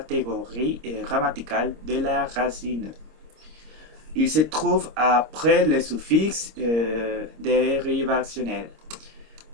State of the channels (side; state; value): left; late; 26 ms